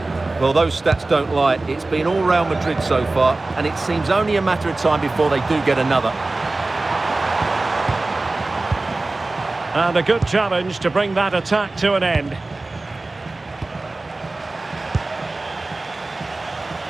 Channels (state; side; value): quieter; left; 3.1 dB